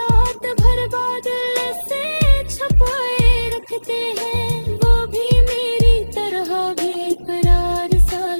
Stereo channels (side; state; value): both; inverted; correlation -1.00